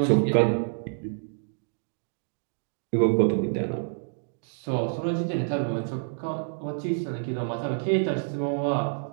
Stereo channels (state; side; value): silent; left; digital silence